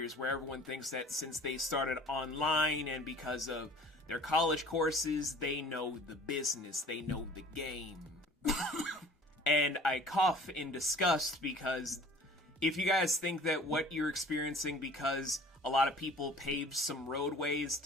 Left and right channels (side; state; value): both; normal; correlation 0.48